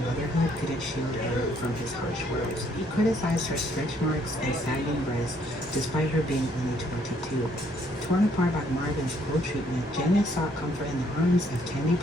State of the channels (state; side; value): normal; both; correlation 0.67